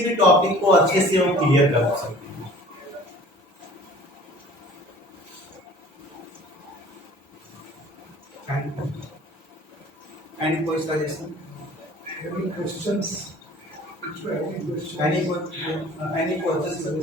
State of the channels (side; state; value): both; normal; correlation 0.48